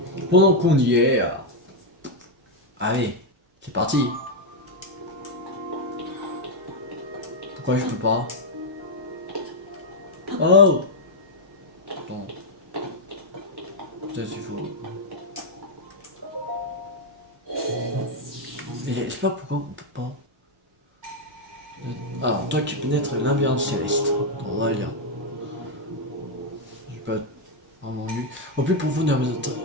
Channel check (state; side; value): normal; both; correlation 0.00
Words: pendant qu'on y est, allez, c'est parti. Pourquoi je peux pas? Oh, bon, peut-être il faut. Mais je sais pas pourquoi on peut pas. Alors, toi qui pénètres l'ambiance céleste, on va lire. J'ai pas vraiment lu. Au plus profond de